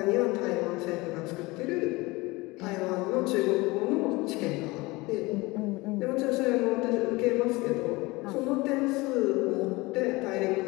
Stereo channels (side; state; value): right; quieter; 22.7 dB